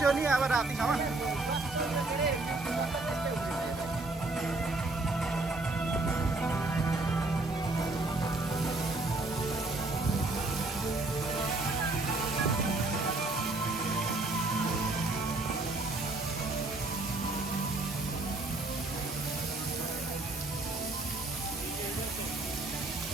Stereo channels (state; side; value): quieter; left; 3.1 dB